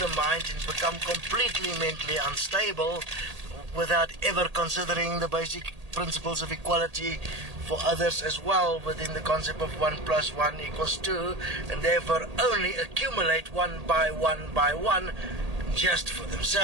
mind and become completely mentally unstable without ever considering the basic principles of equality for others as well, within the concept of 1 plus 1 equals 2, and therefore only accumulate one by one just for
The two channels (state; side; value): late; left; 1.8 ms